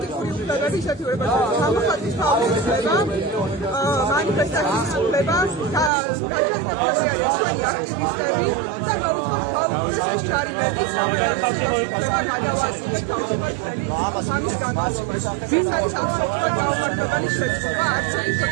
უფლებების შეთანხმება, გამოხატვის თავისუფლება, მანიფესტაციის უფლება და გაჯერებულები არიან ჩვენი აქტივისტები და მოუწევთ გაუქმდეს ეს ჯარიმები, რომელიც უფლება გადავასრულოს თავისუფლად ამის განმავლობაში. ეს არის აბსოლუტურად გაუმართლებელი შეცდომა, არც ერთი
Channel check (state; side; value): drops out; left; at 5.9 s